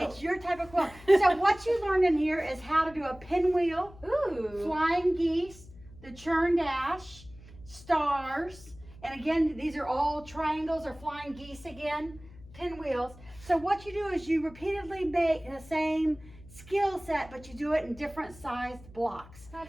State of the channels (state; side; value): noise; left; hum, 20 dB below the sound